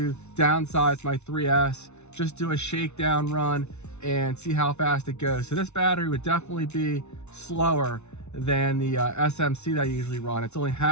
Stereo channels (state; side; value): late; right; 0.82 ms